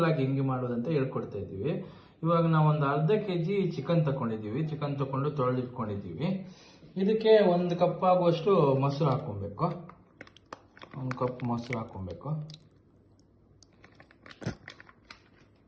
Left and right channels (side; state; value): both; identical; correlation 1.00